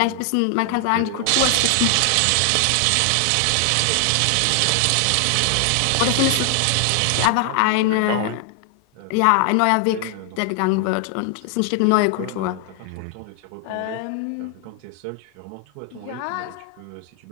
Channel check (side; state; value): both; different; correlation 0.00